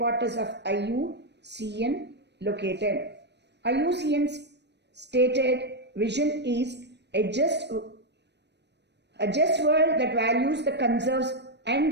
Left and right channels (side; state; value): left; late; 0.50 ms